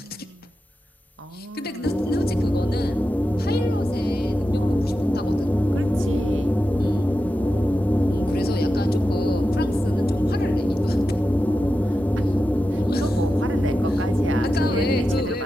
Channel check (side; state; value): both; normal; correlation 0.91